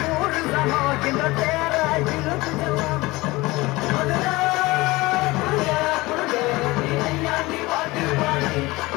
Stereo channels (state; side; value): quieter; right; 21.2 dB